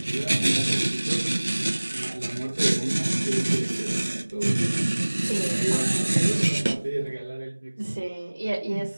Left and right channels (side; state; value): both; inverted; correlation -1.00